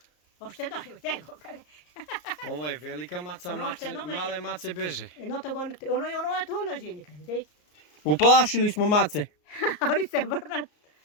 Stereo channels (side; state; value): right; late; 34 ms